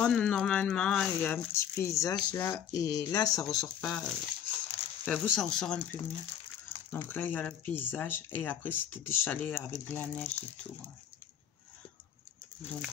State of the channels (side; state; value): right; quieter; 9.4 dB